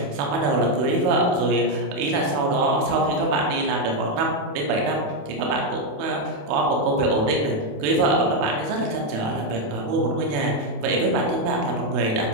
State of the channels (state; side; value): late; left; 28 ms